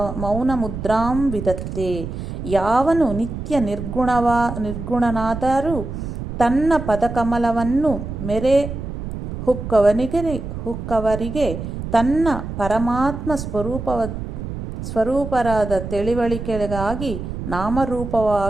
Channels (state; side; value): noise; right; rumble, 7 dB below the sound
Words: ಮೌನಮುದ್ರಾಂ ವಿದತ್ತೆ. ಯಾವನು ನಿತ್ಯ ನಿರ್ಗುಣನಾದರೂ ತನ್ನ ಪದಕಮಲವನ್ನು ಮೆರೆ ಹುಕ್ಕವರಿಗೆ ತನ್ನ ಪರಮಾತ್ಮ ಸ್ವರೂಪರಾದ ತಿಳಿವಳಿಕೆಗಾಗಿ